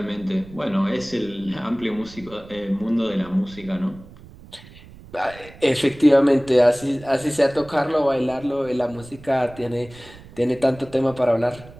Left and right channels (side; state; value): right; noise; rumble, 20 dB below the sound